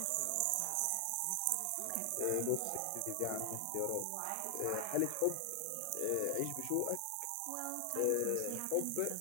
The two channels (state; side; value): different; both; correlation 0.00